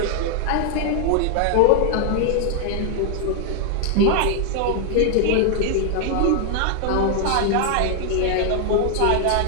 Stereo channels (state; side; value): different; both; correlation 0.00